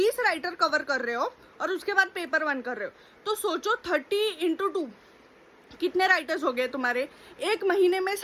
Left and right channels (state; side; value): identical; both; correlation 1.00